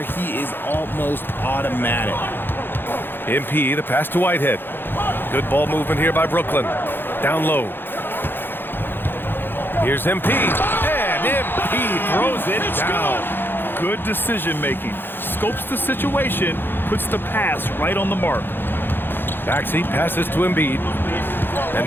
he is almost automatic. MP, the pass to Whitehead. Good ball movement here by Brooklyn. Down low. Here's MP, and MP throws it down. Good decision making. Scopes the situation, puts the pass right on the mark. Maxey passes to Embiid.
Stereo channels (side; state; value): right; late; 0.10 ms